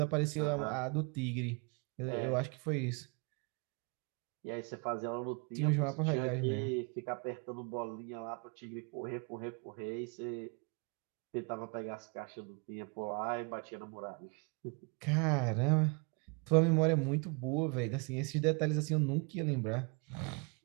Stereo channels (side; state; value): left; quieter; 33.6 dB